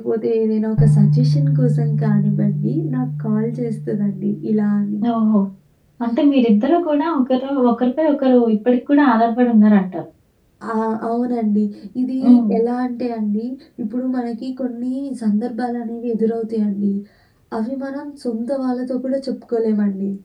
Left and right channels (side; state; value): both; identical; correlation 1.00